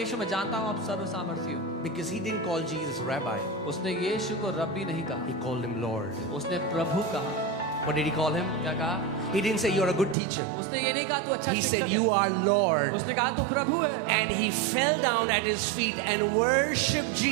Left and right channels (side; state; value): left; drops out; at 10.2 s